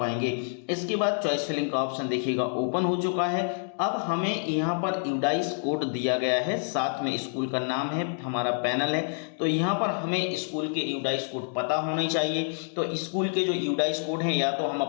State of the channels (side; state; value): right; silent; digital silence